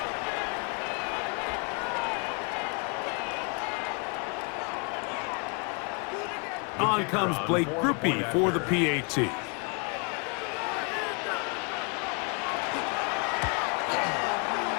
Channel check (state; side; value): quieter; right; 34.9 dB